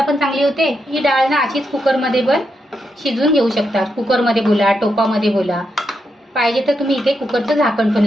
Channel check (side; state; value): both; normal; correlation 0.83